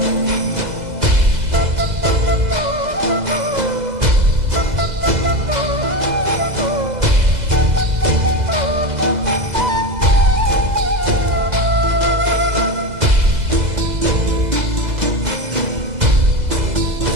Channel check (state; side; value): late; left; 2.0 ms